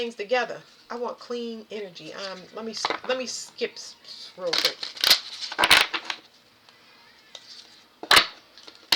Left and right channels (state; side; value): identical; both; correlation 1.00